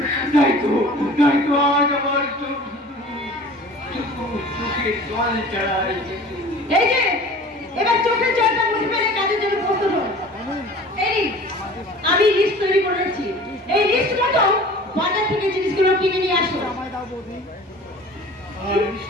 তাই তো আজ আমার চোখে জল চড়ায়। এই যে এবার চোখের জলটা মুছে ফেলে কাজের জন্য প্রস্তুত হন। এই আমি লিস্ট তৈরি করে রেখেছি, এই লিস্ট মতো বাজার থেকে জিনিসগুলো কিনে নিয়ে আসো।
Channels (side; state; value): both; normal; correlation 0.43